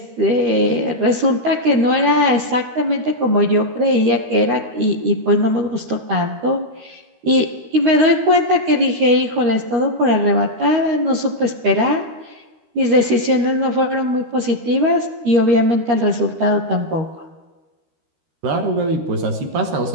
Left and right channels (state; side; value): late; left; 13 ms